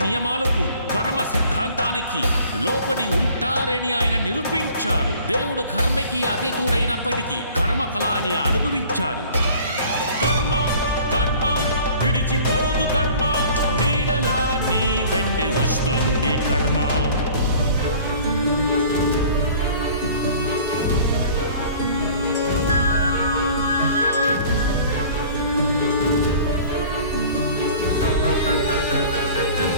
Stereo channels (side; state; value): both; inverted; correlation -0.48